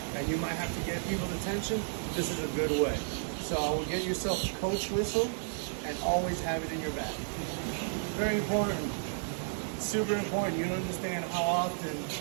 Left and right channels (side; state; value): left; silent; digital silence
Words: and you might have to get people's attention. This is a good way. So I will get yourself a coach whistle and always have it in your bag. Very important. Super important. You don't understand how often